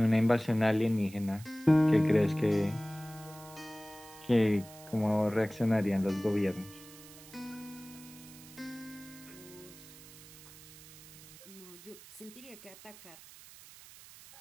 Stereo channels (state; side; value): noise; right; hiss, 19 dB below the sound